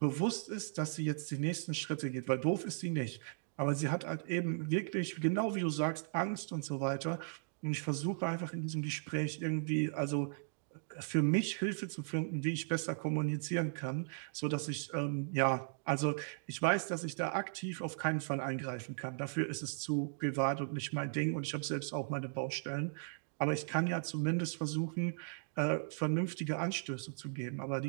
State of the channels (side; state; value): left; silent; digital silence